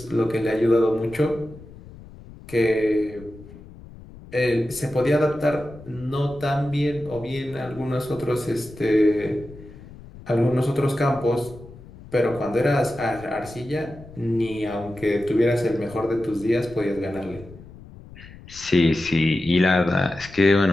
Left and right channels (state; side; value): noise; left; rumble, 18 dB below the sound